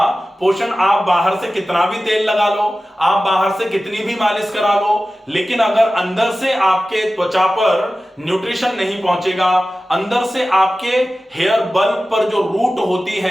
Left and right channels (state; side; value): normal; both; correlation 0.95